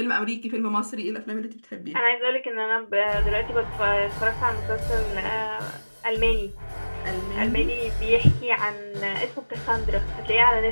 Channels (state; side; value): inverted; both; correlation -1.00